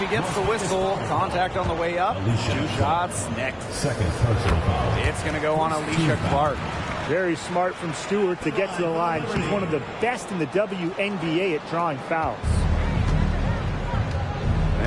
gets the whistle. Contact on the way up. 2 shots next. Second personal foul. It's going to go on Alicia Clark. Very smart from Stewart to get to the line. She's one of the best in the WNBA at drawing fouls.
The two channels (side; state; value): both; identical; correlation 1.00